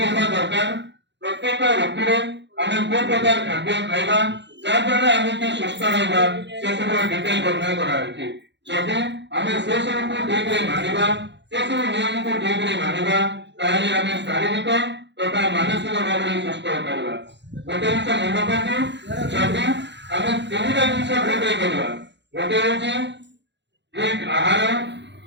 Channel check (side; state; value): left; late; 0.52 ms